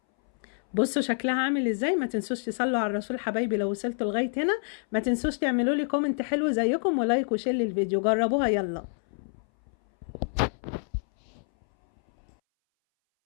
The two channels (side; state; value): right; silent; 60 dB below the other